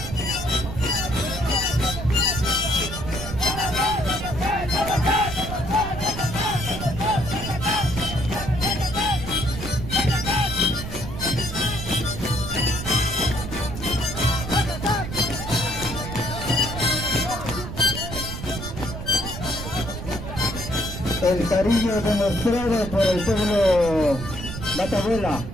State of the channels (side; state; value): right; noise; rumble, 8 dB below the sound